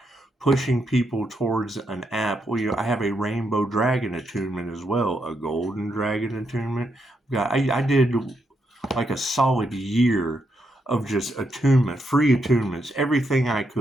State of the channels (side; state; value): both; normal; correlation 0.80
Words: pushing people towards an app. I have a rainbow dragon attunement as well, a golden dragon attunement. I did like a solid year of just attunement, free attunements, everything I